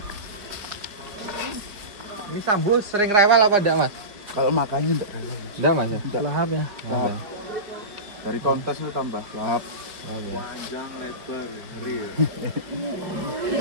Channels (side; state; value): left; late; 4.9 ms